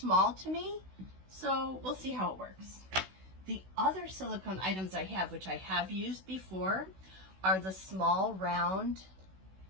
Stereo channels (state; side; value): late; left; 16 ms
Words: to me, so we'll see how it works. The other silicone items I have, which I have used before, are the small round